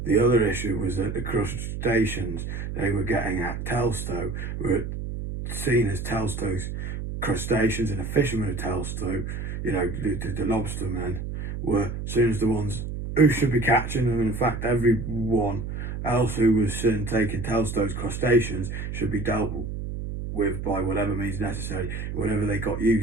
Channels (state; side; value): noise; right; hum, 5 dB below the sound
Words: The other issue was that the crustaceans they were getting at Telstow were seen as Telstow's crustaceans, and the fishermen of Telstow, you know, the lobstermen, were seen as the ones who should be catching them. In fact, everyone else who was seen taking Telstow's crustaceans should be dealt with by whatever means necessary, whatever they got